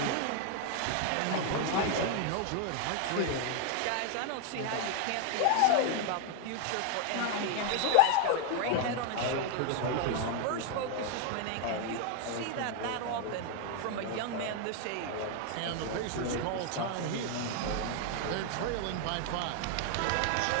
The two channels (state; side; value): different; both; correlation 0.01